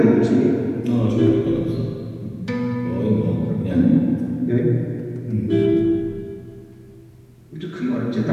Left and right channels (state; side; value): identical; both; correlation 1.00